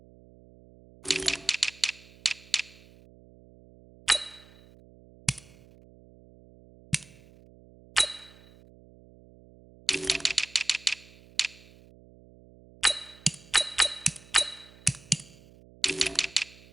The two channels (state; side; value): noise; right; hum, 24 dB below the sound